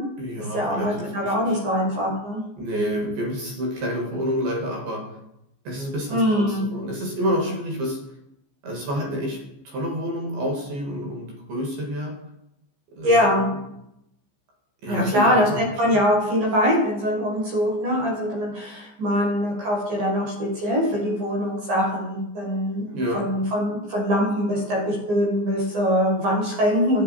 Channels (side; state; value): left; late; 15 ms